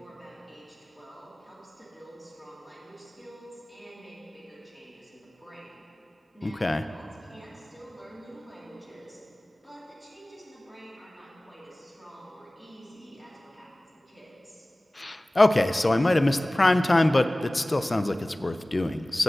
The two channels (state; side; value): normal; both; correlation 0.98